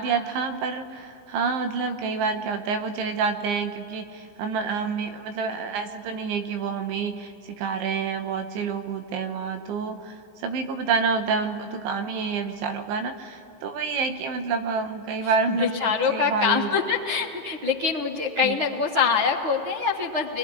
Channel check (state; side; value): late; left; 15 ms